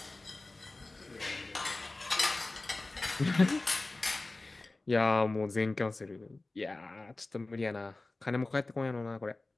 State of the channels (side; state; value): right; quieter; 3.1 dB